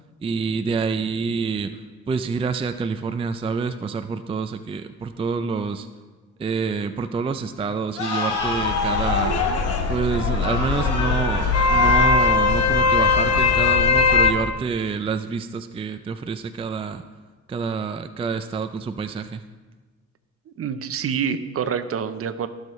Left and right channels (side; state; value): both; normal; correlation 0.17